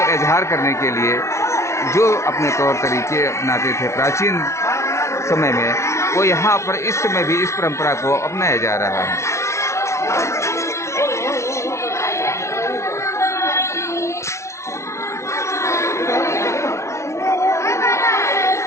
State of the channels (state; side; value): late; right; 0.13 ms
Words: इजहार करने के लिए जो अपने तौर तरीके अपनाते थे प्राचीन समय में, वो यहाँ पर इस समय भी इस परंपरा को अपनाया जा रहा है।